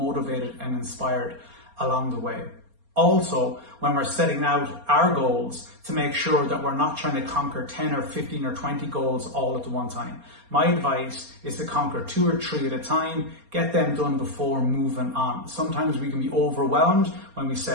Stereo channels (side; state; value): left; late; 4.3 ms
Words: and inspired along the way. Also, when we're setting out our goals, to make sure that we're not trying to conquer 10 or 15 or 20 goals all at the one time. My advice is to conquer 2 or 3 at a time, get them done before moving on. Sometimes we can be overwhelmed when we